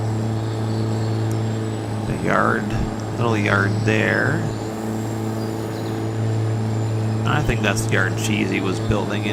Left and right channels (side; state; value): both; identical; correlation 1.00